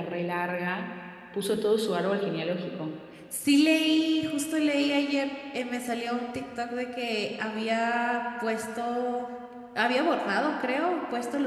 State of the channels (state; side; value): identical; both; correlation 1.00